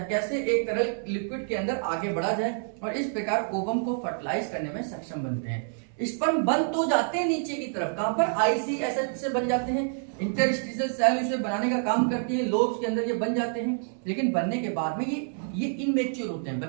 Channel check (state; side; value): silent; left; 60 dB below the other